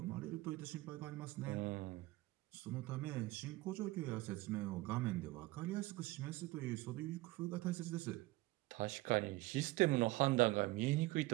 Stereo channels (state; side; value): quieter; left; 19.3 dB